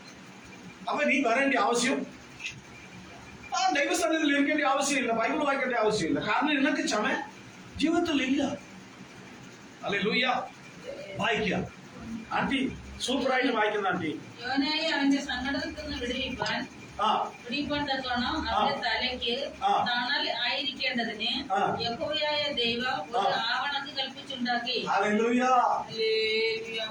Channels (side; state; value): both; identical; correlation 1.00